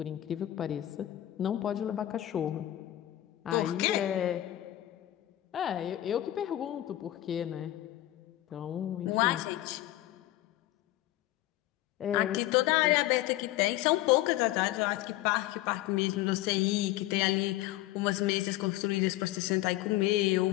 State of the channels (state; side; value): quieter; right; 15.1 dB